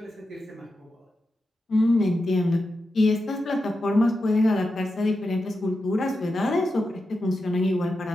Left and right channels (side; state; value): both; normal; correlation 0.89